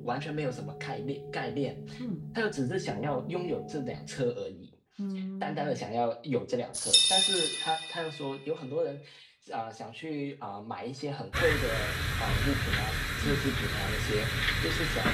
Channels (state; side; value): identical; both; correlation 1.00